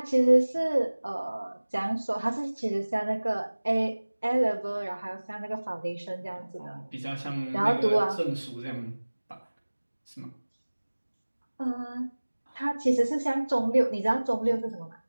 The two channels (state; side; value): inverted; both; correlation -1.00